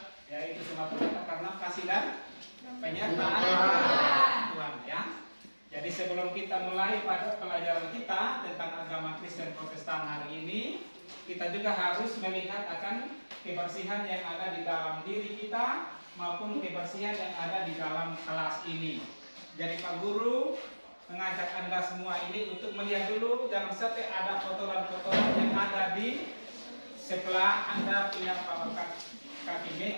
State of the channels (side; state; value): both; inverted; correlation -1.00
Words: ya itu semata-mata karena kasih dan penyertaan Tuhan, ya. Jadi sebelum kita mulai pada pelajaran kita tentang agama Kristen Protestan hari ini, kita juga harus melihat akan kebersihan yang ada di dalam diri kita maupun kebersihan yang ada di dalam kelas ini. Jadi Pak Guru mengajak Anda semua ini untuk melihat dulu, jangan sampai ada kotoran-kotoran yang ada di sebelah Anda punya kaki